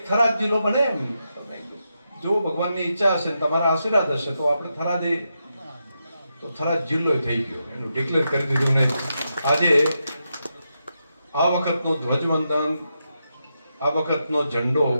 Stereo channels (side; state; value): both; inverted; correlation -0.85